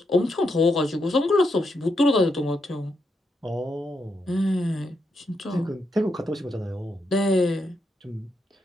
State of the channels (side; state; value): both; normal; correlation 0.81